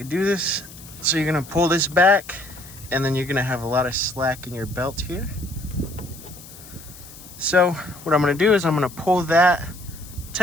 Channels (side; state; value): left; noise; hiss, 18 dB below the sound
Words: do this. So you're going to pull this back, and then you're going to have a lot of slack in your belt here. So what I'm going to do is I'm going to pull that